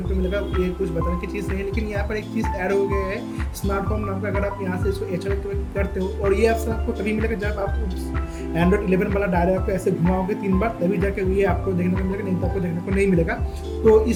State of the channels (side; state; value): both; identical; correlation 1.00